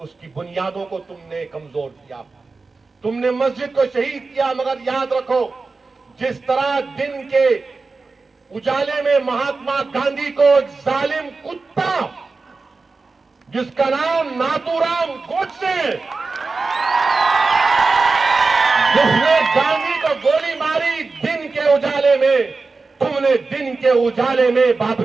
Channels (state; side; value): quieter; left; 4.0 dB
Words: उसकी बुनियादों को तुमने कमजोर किया, तुमने मस्जिद को शहीद किया। मगर याद रखो, जिस तरह दिन के उजाले में महात्मा गांधी को एक जालिम कुत्ता जिसका नाम नाथूराम गोडसे, जिसने गांधी को गोली मारी दिन के उजाले में, तुमने दिन के उजाले में